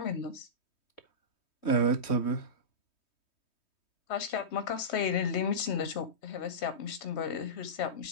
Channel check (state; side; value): late; right; 3.2 ms